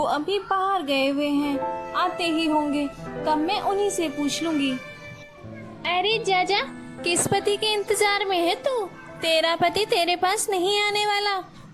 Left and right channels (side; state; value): both; identical; correlation 1.00